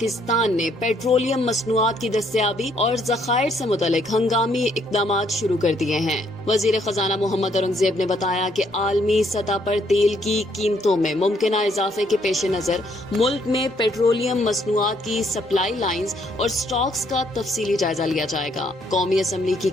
نے پیٹرولیم مصنوعات کی دستیابی اور ذخائر سے متعلق ہنگامی اقدامات شروع کر دیے ہیں۔ وزیر خزانہ محمد اورنگزیب نے بتایا کہ عالمی سطح پر تیل کی قیمتوں میں ممکنہ اضافے کے پیش نظر ملک میں پیٹرولیم مصنوعات کی سپلائی لائنز اور سٹاکس کا تفصیلی جائزہ لیا جائے گا۔ قومی اسمبلی کی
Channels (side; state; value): both; normal; correlation 0.69